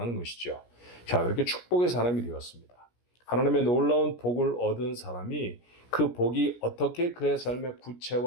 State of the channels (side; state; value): right; late; 17 ms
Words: 것이죠. 자, 그렇게 축복의 사람이 되었습니다. 하나님의 놀라운 복을 얻은 사람이 그 복이 어떻게 그의 삶에